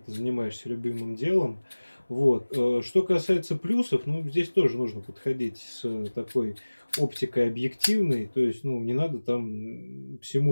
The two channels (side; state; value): both; inverted; correlation -1.00